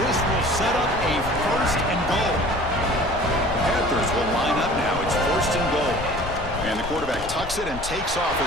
will set up a 1st and goal. The Panthers will line up now. It's 1st and goal. And the quarterback tucks it and takes off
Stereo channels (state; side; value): noise; left; rumble, 10 dB below the sound